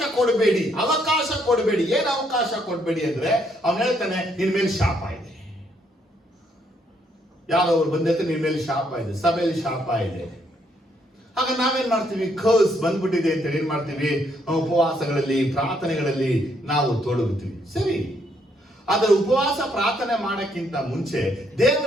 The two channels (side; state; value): both; normal; correlation 0.72